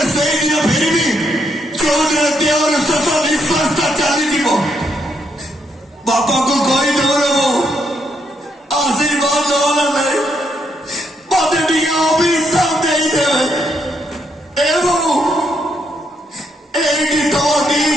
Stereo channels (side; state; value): both; normal; correlation 0.76